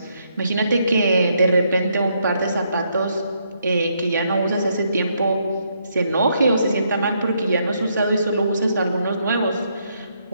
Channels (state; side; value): inverted; both; correlation -0.74